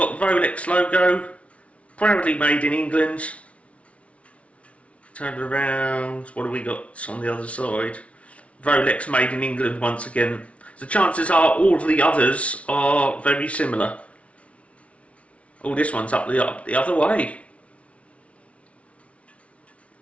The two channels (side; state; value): right; late; 0.063 ms